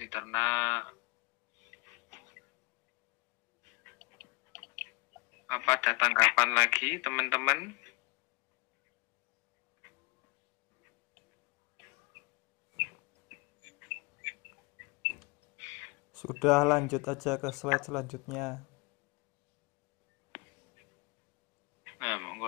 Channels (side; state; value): right; quieter; 27.9 dB